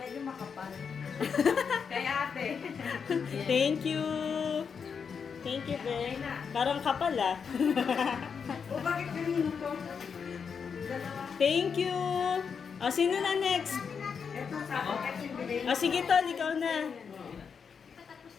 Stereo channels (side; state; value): right; quieter; 6.3 dB